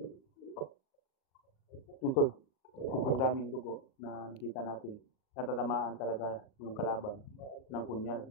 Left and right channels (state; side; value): late; right; 38 ms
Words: Yung tol, sobrang daming dugo na nakita natin. Natatamaan talaga yung kalaban ng punyal,